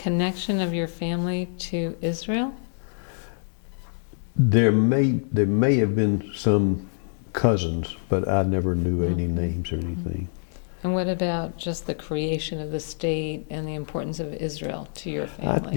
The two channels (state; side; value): silent; right; digital silence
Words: of your family to Israel? There may have been some cousins, but I never knew any names or anything. And what about just the creation of the state and the importance of Israel to your